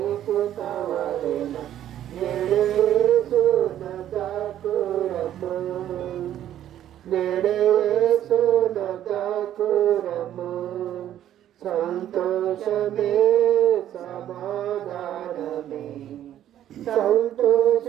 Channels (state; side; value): quieter; left; 11.5 dB